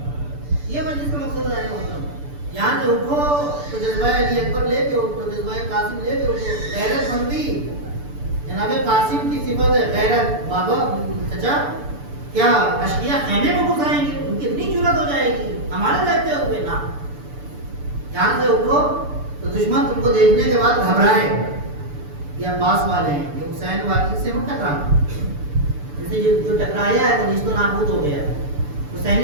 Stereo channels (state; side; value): late; left; 6.9 ms